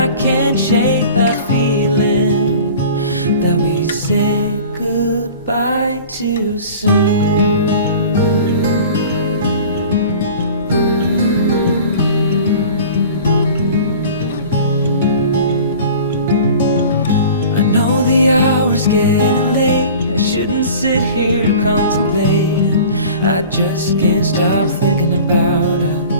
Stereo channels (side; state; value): both; inverted; correlation -0.42